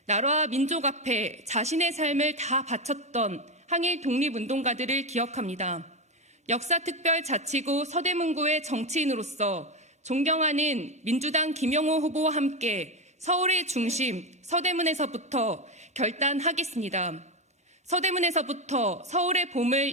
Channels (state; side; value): normal; both; correlation 0.13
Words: 나라와 민족 앞에 자신의 삶을 다 바쳤던 항일 독립운동가들을 기억합니다. 역사특별자치구 서대문구의 정치인으로서 존경하는 민주당 김영호 후보와 함께 서울의 중심 서대문에서부터 결단하겠습니다. 서대문에서부터 서울의